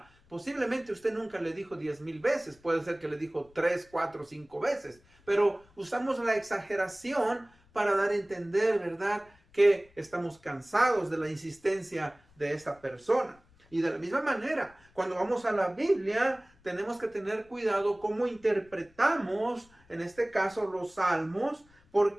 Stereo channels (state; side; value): noise; left; rumble, 30 dB below the sound